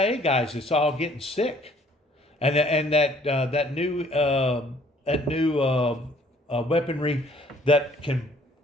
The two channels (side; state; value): both; normal; correlation 0.59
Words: guys that's all getting sick, and that new weaponry that can